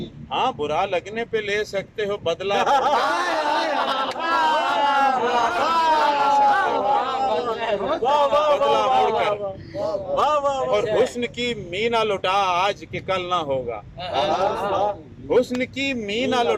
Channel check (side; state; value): both; identical; correlation 1.00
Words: हाँ, बुरा लगने पे ले सकते हो बदला। बदला मुड़कर। और हुस्न की मीना लुटा आज के कल ना होगा। हुस्न की मीना